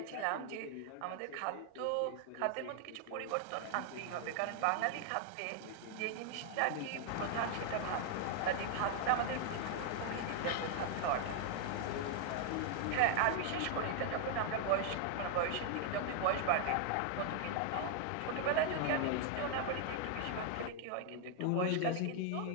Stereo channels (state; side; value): different; both; correlation 0.00